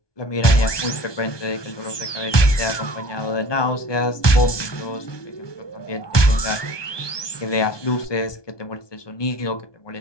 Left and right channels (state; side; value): late; right; 1.2 ms